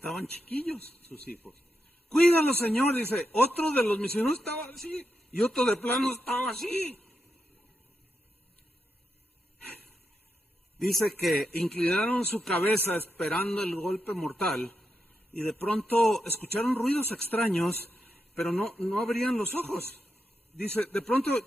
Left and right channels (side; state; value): both; normal; correlation 0.85